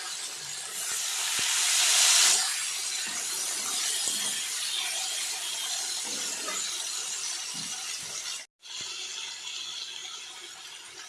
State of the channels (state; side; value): identical; both; correlation 1.00